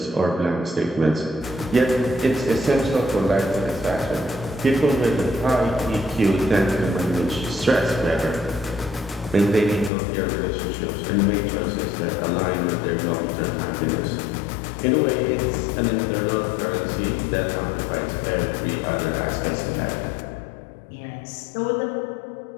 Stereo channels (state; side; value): drops out; right; at 9.9 s